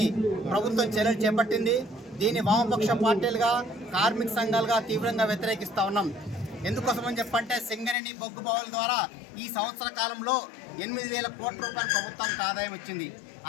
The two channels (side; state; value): right; drops out; at 8.0 s